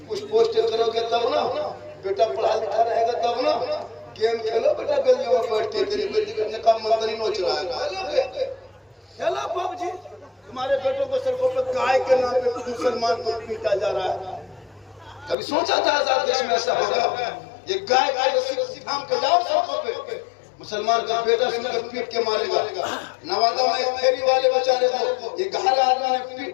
कुछ पोस्ट करोगे तब ना, बेटा पढ़ा लिखा रहेगा तब ना। गेम खेलो बेटा गलियों में बैठ के, तेरी बेटी का मंत्री नोच रहा है। खेलो पबजी, तुम्हारे बेटों को सड़कों पर गाय के नाम पे मुसलमान को पीटा जा रहा है। कभी सोचा था आजाद देश में ऐसा होगा? ये गाय का रस्सी थाम के जाओ सड़कों पे, मुसलमान का बेटा सुनकर पीट के मारेगा। नवादा में एक फेरी वाले बेचारे को ये घायल आदमी ने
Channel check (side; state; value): right; drops out; at 15.4 s